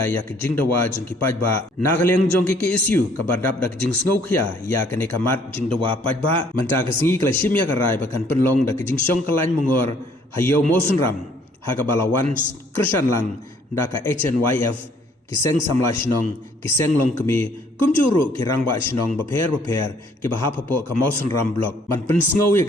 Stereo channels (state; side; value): normal; both; correlation 0.62